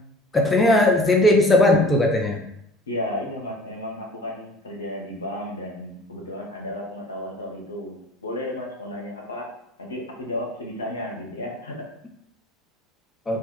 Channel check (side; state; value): both; normal; correlation 0.46